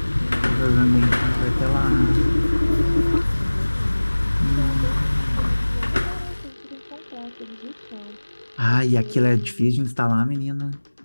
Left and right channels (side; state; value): both; inverted; correlation -1.00